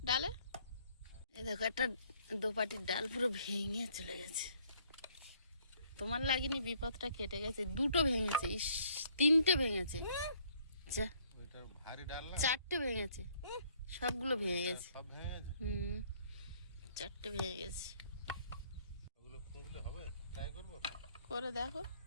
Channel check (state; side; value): inverted; both; correlation -0.64